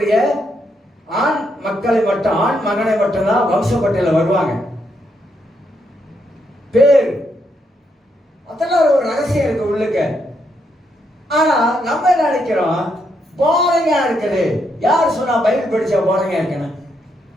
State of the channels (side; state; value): both; normal; correlation 0.78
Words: ஆண் மக்களை மட்டும், ஆண் மகனை மட்டும்தான் வம்சப்பட்டியல வருவாங்க. பேர் அதெல்லாம் ஒரு ரகசியம் இருக்கு உள்ளுக்க. ஆனா நம்ம என்ன நினைக்கிறோம், போரையா இருக்குது. யார் சொன்னா பைபிள் படிச்சா போரையா இருக்கணும்?